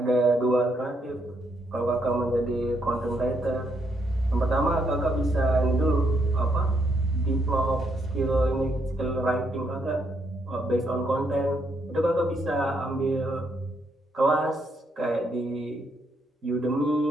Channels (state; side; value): normal; both; correlation 0.75